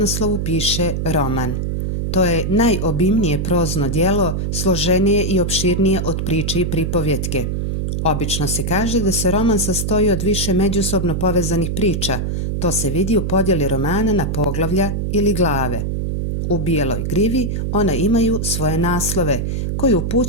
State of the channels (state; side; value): noise; right; hum, 1 dB below the sound